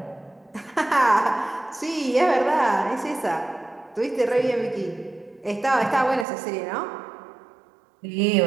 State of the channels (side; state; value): left; drops out; at 6.2 s